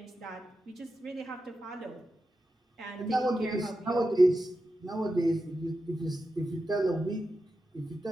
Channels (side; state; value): both; normal; correlation 0.90